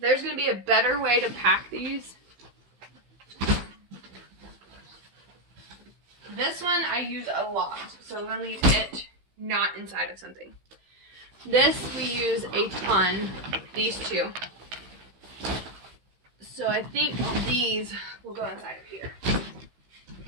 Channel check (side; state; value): left; late; 16 ms